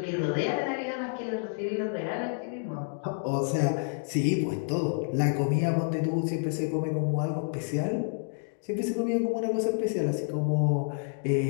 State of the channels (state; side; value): silent; right; digital silence